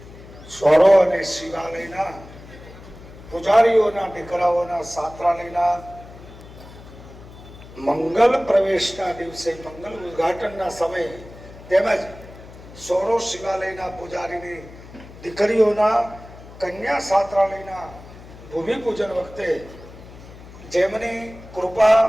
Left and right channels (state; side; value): noise; left; hum, 18 dB below the sound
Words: સ્વરો અને શિવાલયના પૂજારીઓના દીકરાઓના સાત્રાલયના મંગલ પ્રવેશના દિવસે મંગલ ઉદ્ઘાટનના સમયે તેમજ સોરો શિવાલયના પૂજારીની દીકરીઓના કન્યા સાત્રાલયના ભૂમિ પૂજન વખતે જેમની કૃપા